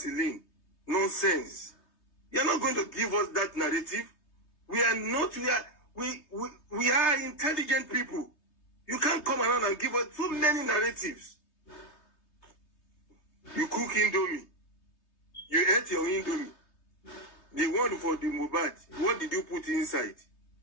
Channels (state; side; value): late; right; 3.2 ms